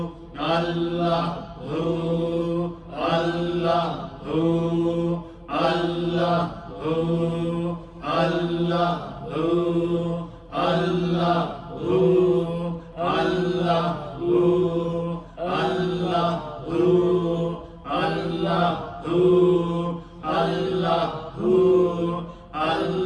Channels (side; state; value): both; identical; correlation 1.00